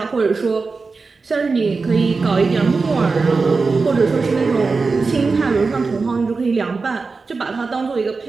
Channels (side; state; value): left; quieter; 4.3 dB